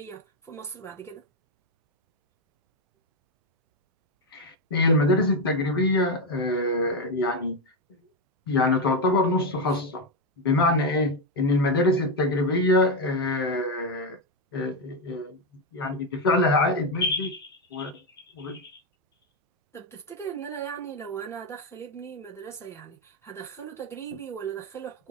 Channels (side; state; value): both; normal; correlation 0.08